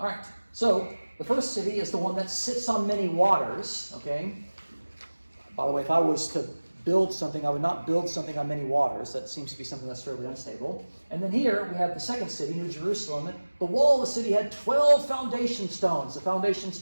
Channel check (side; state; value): both; inverted; correlation -1.00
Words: right. So the first city is the one that sits on many waters. Okay? By the way, if I was to build something, I would not build something on many waters. That seems to be something that's fairly unstable. And then here we have the second city, New Jerusalem. The wall of the city had 12 foundation stones. The foundation